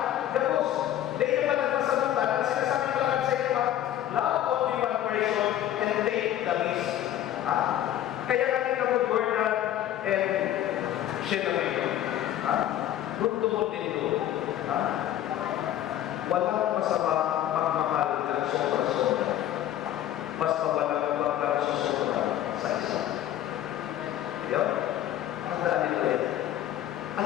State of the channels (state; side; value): quieter; right; 12.0 dB